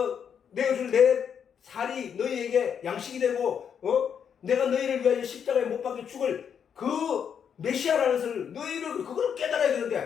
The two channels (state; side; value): quieter; right; 7.7 dB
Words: 내어줄 내 살이 너희에게 양식이 되고 내가 너희를 위하여 십자가에 못 박혀 죽을 그 메시아라는 것을 너희를 그걸 깨달아야